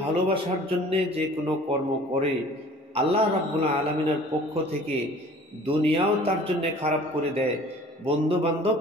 ভালোবাসার জন্যে যে কোনো কর্ম করে, আল্লাহ রাব্বুল আলামিনের পক্ষ থেকে দুনিয়াও তার জন্য খারাপ করে দেয়, বন্ধু বান্ধব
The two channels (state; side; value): normal; both; correlation 0.49